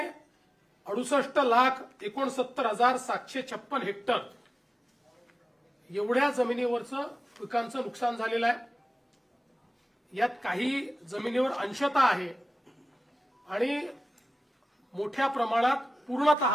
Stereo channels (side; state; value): both; normal; correlation 0.96